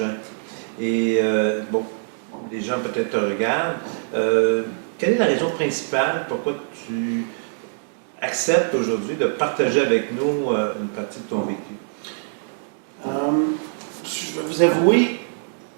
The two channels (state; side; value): silent; left; digital silence